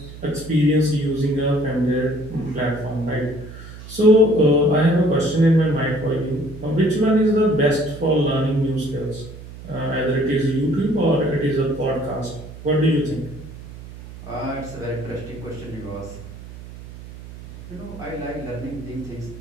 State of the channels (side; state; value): right; noise; hum, 15 dB below the sound